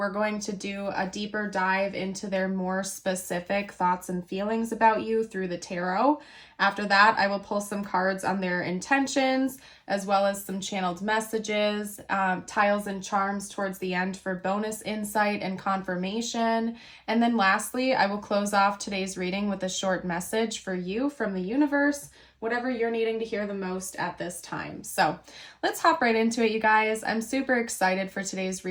going to do a deeper dive into their more specific thoughts and feelings about you through the tarot. After that, I will pull some cards on their intentions, as well as some channeled messages, tiles and charms towards the end for bonus insight and confirmation. And then lastly, I will close off today's reading with a short message for you from the universe, whatever you're needing to hear the most at this time. So let's hop right into it, you guys. I'm super excited for today's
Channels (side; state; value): both; identical; correlation 1.00